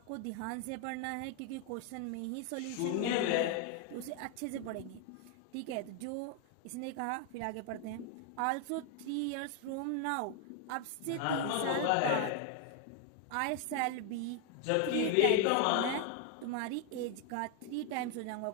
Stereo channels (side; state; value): both; different; correlation 0.01